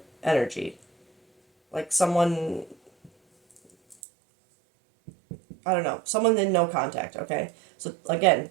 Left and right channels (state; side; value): drops out; left; at 4.0 s